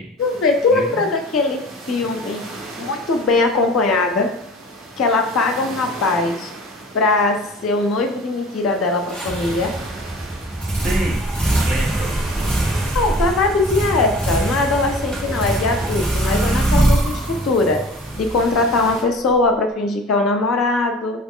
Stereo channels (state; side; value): normal; both; correlation 0.42